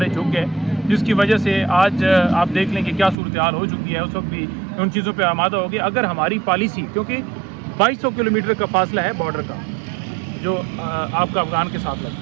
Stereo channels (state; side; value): drops out; left; at 3.2 s